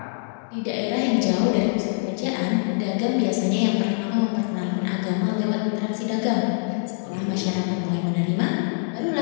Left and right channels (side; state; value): right; silent; digital silence